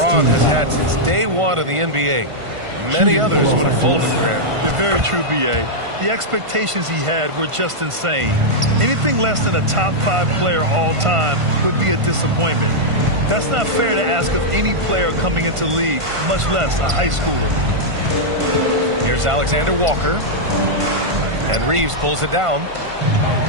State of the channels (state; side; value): late; left; 1.5 ms